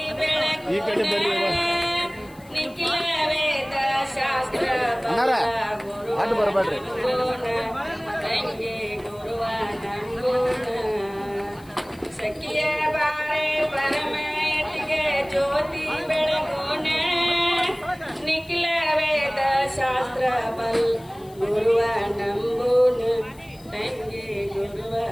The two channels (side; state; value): left; noise; hiss, 25 dB below the sound